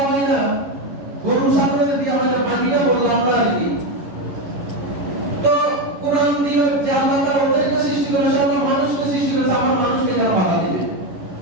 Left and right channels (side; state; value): left; late; 11 ms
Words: হয় না, গরু ছাগলের বিয়ে হয় না, বাকিটা বললো আমরা আর কি। তো কোরআন দিল যে আল্লাহ তাআলা ওদেরকে সৃষ্টি করেছে, আল্লাহ মানুষকে সৃষ্টি করেছে, আমার মানুষকে কেন বাধা দিবে?